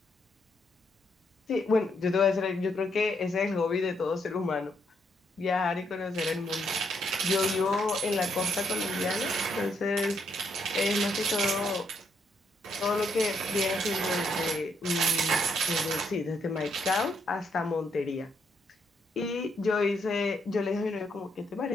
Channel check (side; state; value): both; normal; correlation 0.75